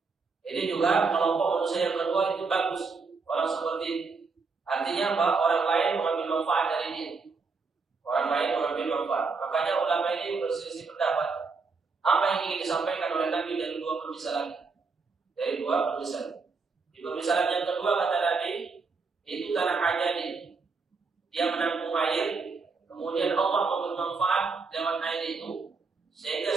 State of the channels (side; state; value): left; quieter; 4.6 dB